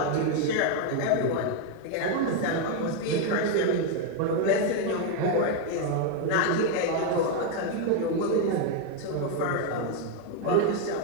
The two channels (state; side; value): different; both; correlation 0.01